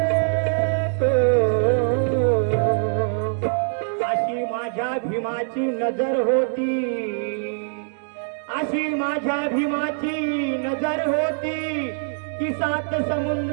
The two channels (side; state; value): left; silent; digital silence